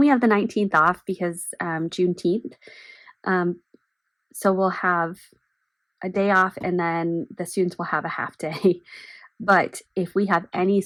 have the 19th off because Juneteenth. So we'll have a day off and then the students will have a half day. But if we have any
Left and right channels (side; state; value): both; identical; correlation 1.00